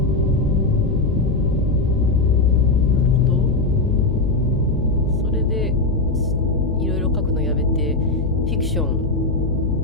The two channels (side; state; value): left; noise; hum, 3 dB below the sound